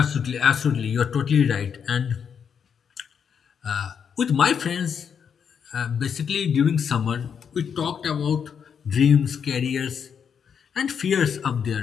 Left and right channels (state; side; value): quieter; right; 7.2 dB